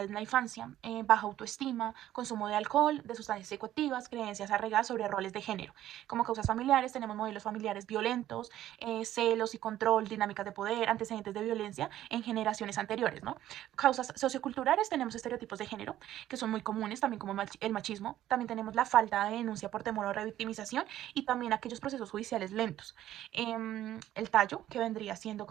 en la infancia, baja autoestima, consumo de alcohol, de sustancias psicoactivas, creencias arraigadas sobre roles de género. Como causas familiares, tenemos modelos familiares violentos, celos y control, dinámicas de poder, antecedentes de violencia en generaciones anteriores, ¿no? Causas socioculturales, tenemos estereotipos de género, que son muy comunes, también como el machismo. También tenemos la falta de denuncia por temor a revictimización y también aquellos procesos judiciales lentos. El tallo, que vendría siendo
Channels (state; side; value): quieter; left; 12.9 dB